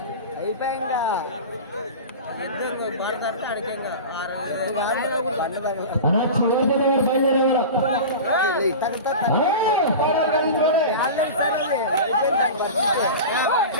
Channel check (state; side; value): inverted; both; correlation -0.30